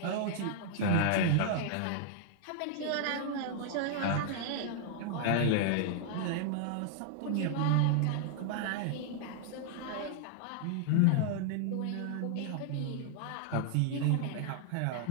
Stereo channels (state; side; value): different; both; correlation -0.01